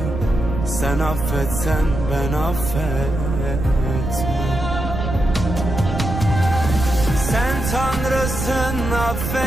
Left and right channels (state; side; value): noise; right; rumble, 4 dB below the sound